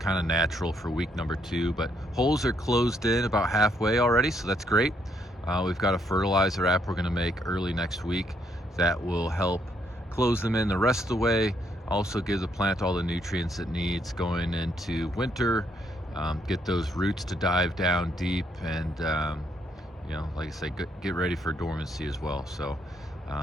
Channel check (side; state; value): both; normal; correlation 0.73